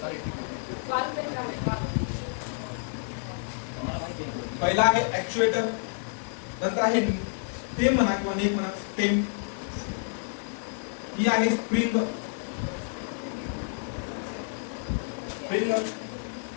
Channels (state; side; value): silent; right; digital silence